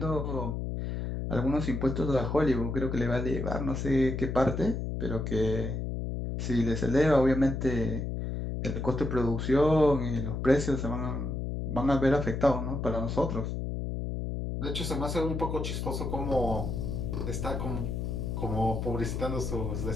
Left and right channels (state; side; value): noise; left; hum, 3 dB below the sound